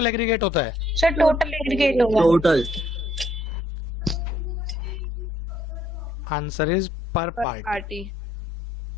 एग्रीगेट होता है? सर टोटल एग्रीगेट होगा। टोटल आंसर इज पर पार्टी। पार्टी।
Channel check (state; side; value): normal; both; correlation 0.67